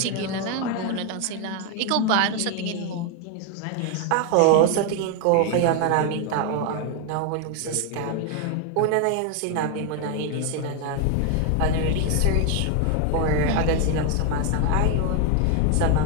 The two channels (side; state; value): both; different; correlation 0.01